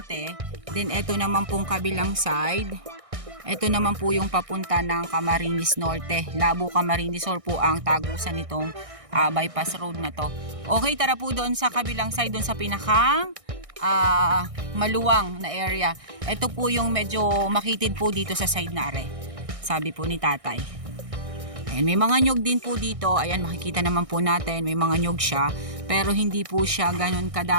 Then ito naman pong kabilang side. Ito naman po yung papunta ng Camarines Norte. Labo Camarines Sur po ang tagusan nitong bypass road na to. Okay, tara po doon sa kabilang side, doon sa pinakang maluwang na area. Ito po yung medyo makitid po dito sa side na are, sabi po ni tatay. Ayan, may mga nyog din po dito. Ayan, makikita naman po natin, may mga nyog siya. Pero hindi po siya ganun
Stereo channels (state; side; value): late; left; 1.6 ms